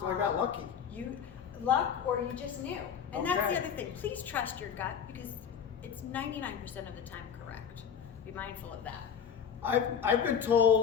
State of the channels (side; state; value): right; quieter; 7.5 dB